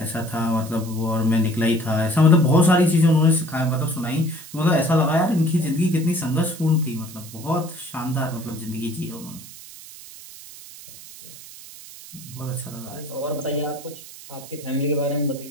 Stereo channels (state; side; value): noise; right; hiss, 16 dB below the sound